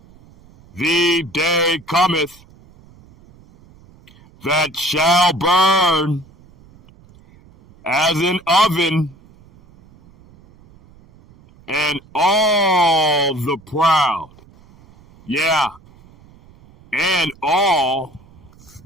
the day cometh that shall burn as an oven, and all the proud, and all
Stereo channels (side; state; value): right; noise; rumble, 26 dB below the sound